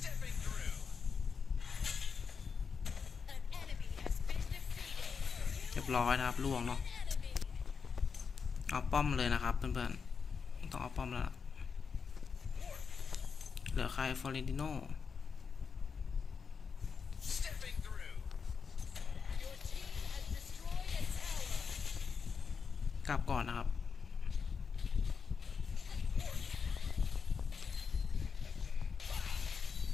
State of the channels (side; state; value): right; quieter; 5.8 dB